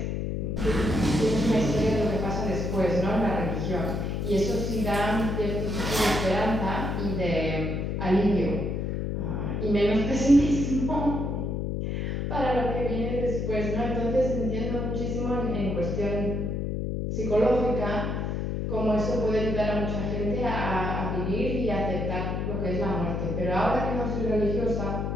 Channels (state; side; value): noise; left; hum, 1 dB below the sound